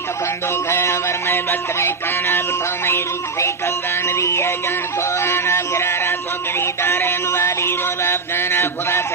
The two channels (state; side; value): quieter; left; 4.4 dB